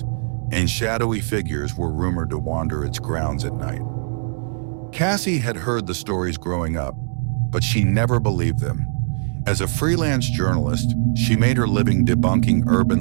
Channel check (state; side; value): silent; left; digital silence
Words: and shadowy figures were rumored to wander its grounds at night. Cassie had heard the stories growing up, but she never believed them. As a freelance journalist, she made her living debunking